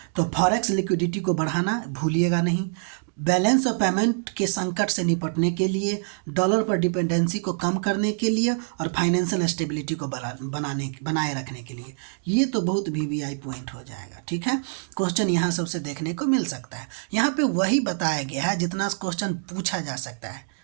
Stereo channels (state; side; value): silent; left; digital silence